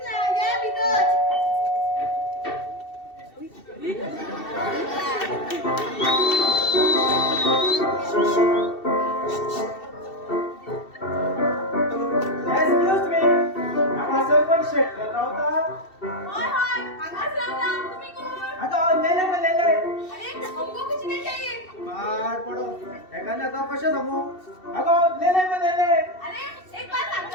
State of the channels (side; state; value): right; late; 2.7 ms